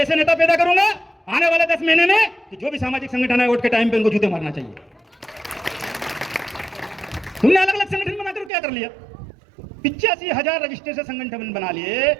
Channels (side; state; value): left; drops out; at 8.5 s